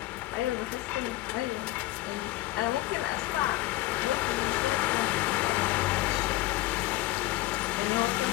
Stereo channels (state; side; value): quieter; right; 17.6 dB